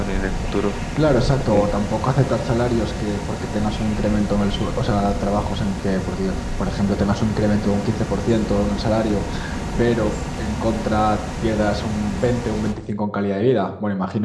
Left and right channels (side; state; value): both; identical; correlation 1.00